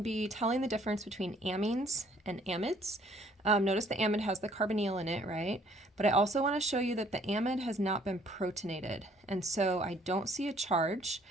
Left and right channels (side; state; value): both; normal; correlation 0.61